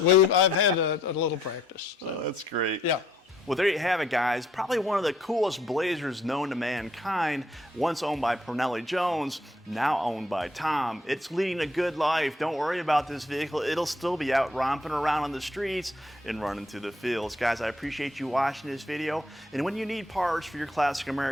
No, I've had a little practice. So. Oh, that's great. Yeah. Well, there you have it, guys. Probably one of the coolest Blazers known to mankind. Once owned by Parnelli Jones, now owned by Tom. It's leading a good life. Don't worry about this vehicle. It'll still be out romping around on the streets and running through the fields. Guys, I appreciate you watching this video. And when you need parts for your classic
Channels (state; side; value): normal; both; correlation 0.67